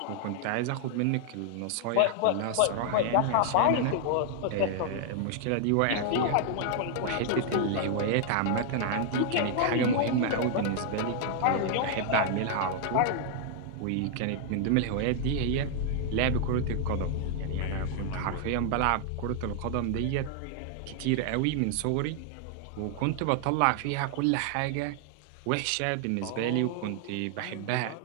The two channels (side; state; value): both; different; correlation 0.00